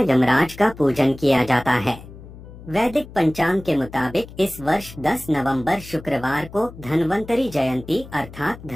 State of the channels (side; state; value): left; noise; hum, 17 dB below the sound